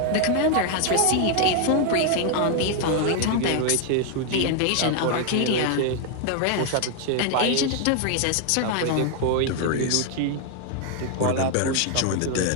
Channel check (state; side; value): different; both; correlation 0.00